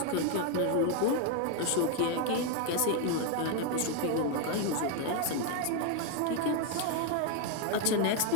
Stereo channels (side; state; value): both; different; correlation 0.01